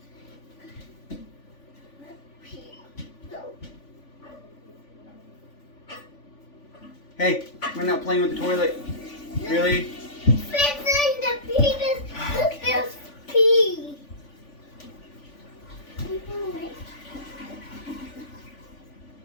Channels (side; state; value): right; late; 3.5 ms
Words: Hey, we're not playing with the toilet. Really? Fixing the penis. Look, there's pee.